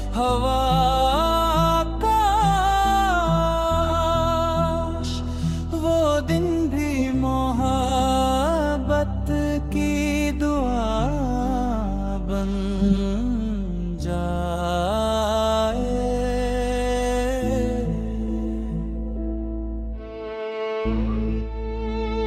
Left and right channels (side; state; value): both; identical; correlation 1.00